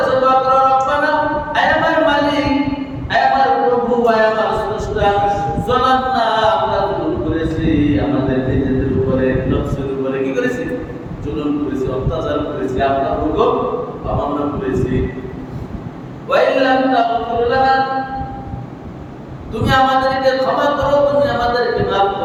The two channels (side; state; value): both; identical; correlation 1.00